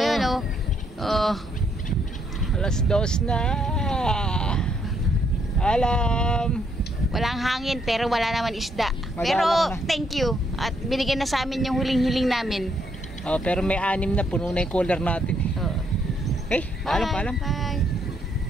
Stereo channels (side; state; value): both; normal; correlation 0.73